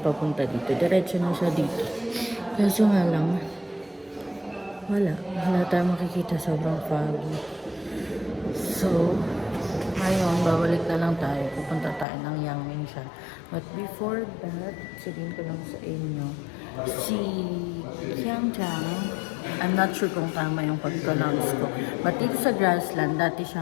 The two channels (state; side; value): drops out; right; at 12.1 s